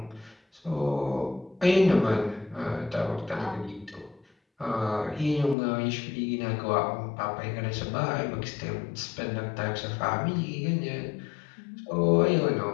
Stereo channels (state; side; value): drops out; right; at 5.6 s